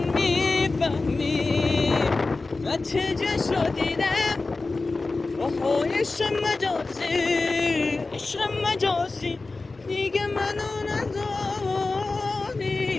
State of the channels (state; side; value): quieter; right; 3.6 dB